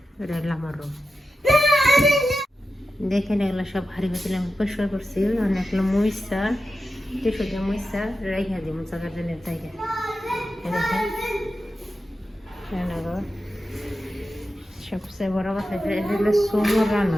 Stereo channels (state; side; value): normal; both; correlation 0.91